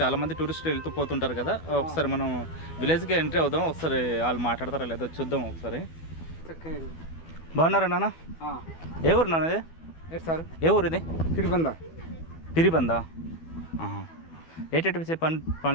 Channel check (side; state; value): right; late; 12 ms